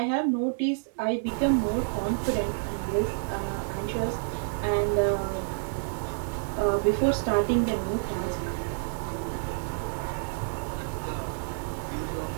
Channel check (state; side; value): silent; left; digital silence